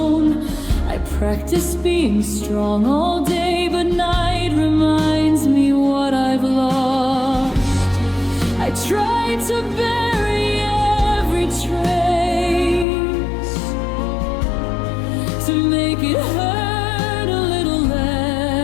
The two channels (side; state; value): right; drops out; at 12.9 s